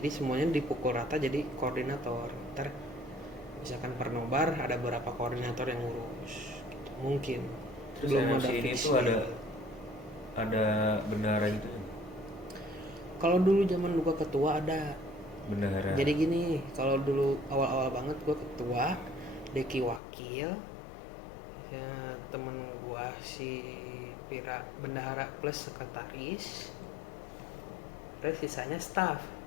semuanya dipukul rata jadi koordinator. Ntar misalkan per nobar ada beberapa koordinator yang ngurus gitu. Mungkin Terus belum ada NFC ini fix tuh nih. ada bendahara gitu ya? Kalau dulu zaman gua ketua ada. Bendahara. Jadi gini, kalau dulu awal-awal banget gua ketua, Deki wakil, ya, temen gua si Pira bendahara plus sekretaris, terus sisanya staff,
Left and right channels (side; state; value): right; drops out; at 20.0 s